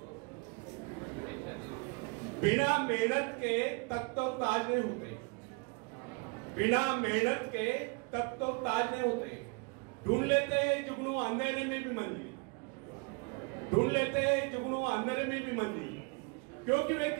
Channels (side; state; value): left; quieter; 32.4 dB